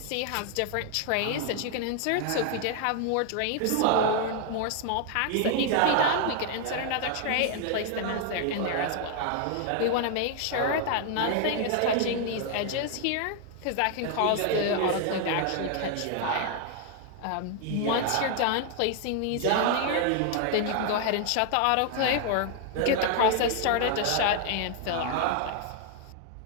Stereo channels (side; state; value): both; different; correlation 0.00